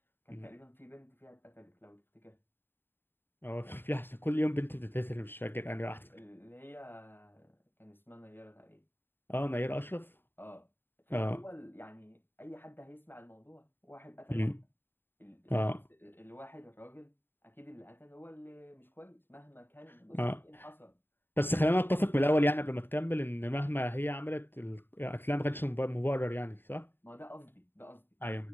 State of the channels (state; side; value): late; right; 0.099 ms